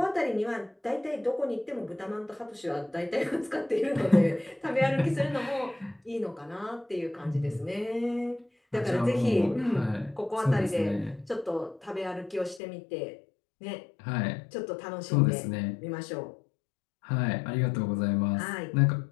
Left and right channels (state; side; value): drops out; right; at 12.6 s